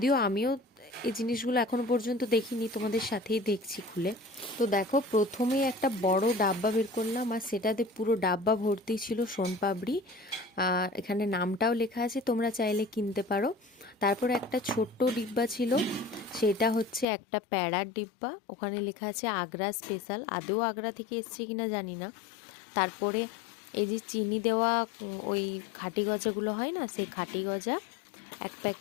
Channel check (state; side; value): drops out; right; at 17.1 s